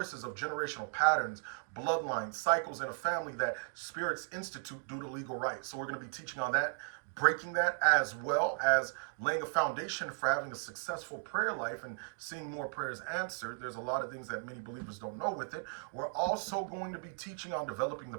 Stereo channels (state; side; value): silent; left; 54 dB below the other